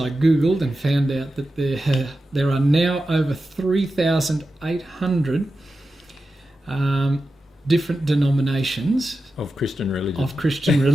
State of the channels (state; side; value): normal; both; correlation 0.91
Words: Googled and found out that there are now over 3,800 different denominations Of Christian